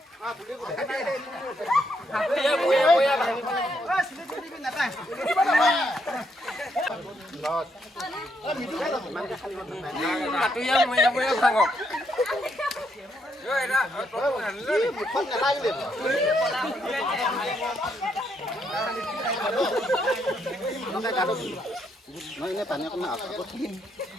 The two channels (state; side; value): normal; both; correlation 0.76